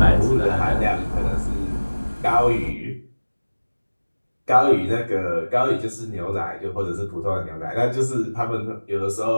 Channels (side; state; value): both; inverted; correlation -1.00